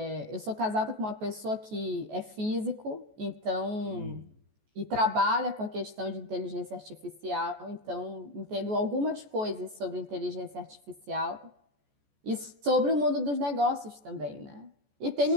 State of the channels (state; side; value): late; left; 14 ms